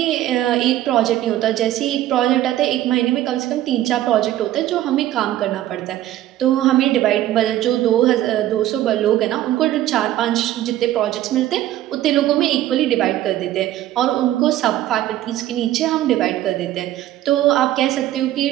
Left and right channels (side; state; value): left; quieter; 13.7 dB